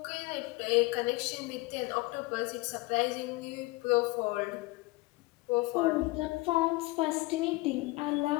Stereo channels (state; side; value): quieter; right; 22.4 dB